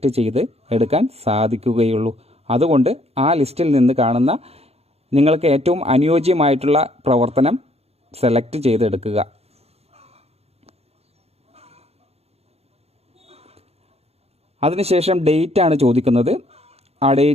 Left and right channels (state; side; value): late; left; 0.30 ms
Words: ചെയ്ത് എടുക്കാൻ സാധിക്കുകയുള്ളൂ. അതുകൊണ്ട് ആ ലിസ്റ്റിൽ നിന്ന് കാണുന്ന നിങ്ങൾക്ക് ഏറ്റവും അനുയോജ്യമായിട്ടുള്ള പ്രവർത്തനം സെലക്ട് ചെയ്തെടുക്കുക. അതിനുശേഷം ഡേറ്റ് ആണ് ചോദിക്കുന്നത്. ആ